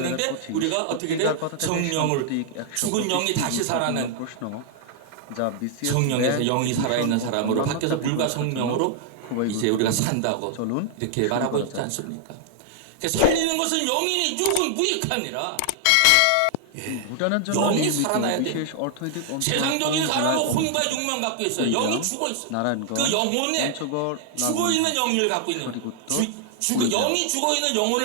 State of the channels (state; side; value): different; both; correlation 0.00